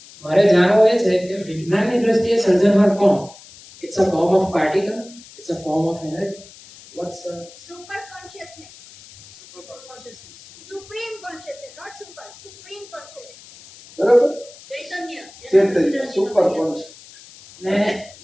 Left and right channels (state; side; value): noise; left; hiss, 21 dB below the sound